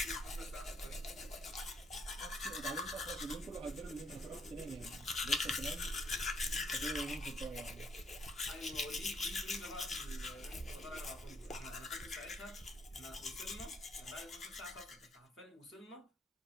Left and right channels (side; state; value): both; normal; correlation 0.68